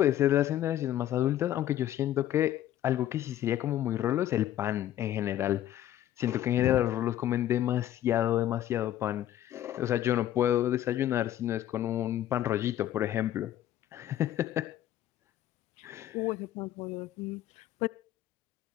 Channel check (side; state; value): right; quieter; 12.3 dB